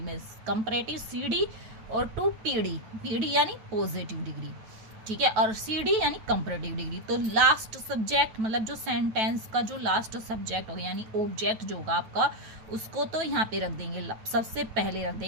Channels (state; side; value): late; left; 9.2 ms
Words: में, कंपैरेटिव सीडी और टू पीडी यानी पॉजिटिव डिग्री, ठीक है, और सीडी यानी कंपैरेटिव डिग्री। तो लास्ट सब्जेक्ट मतलब जो सेंटेंस का जो लास्ट सब्जेक्ट होगा यानी ऑब्जेक्ट जो होगा आपका, उसको तो यहाँ पे रख देंगे, सबसे पहले रख